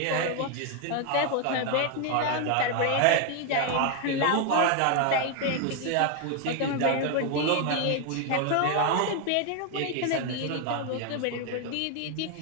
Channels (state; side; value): different; both; correlation 0.01